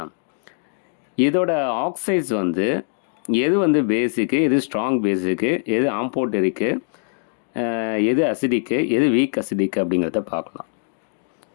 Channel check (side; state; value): right; silent; digital silence